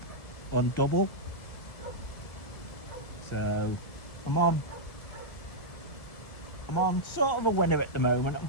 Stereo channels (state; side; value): late; right; 1.4 ms